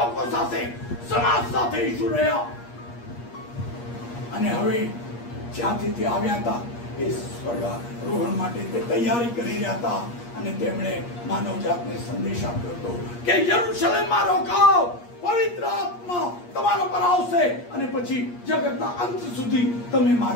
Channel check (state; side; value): late; right; 8.4 ms